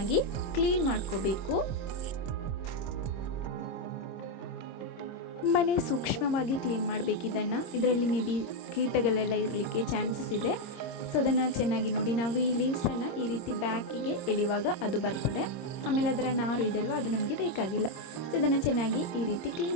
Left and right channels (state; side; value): late; right; 26 ms